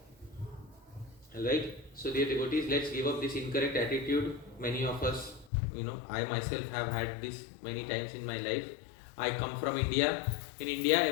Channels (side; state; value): right; drops out; at 5.5 s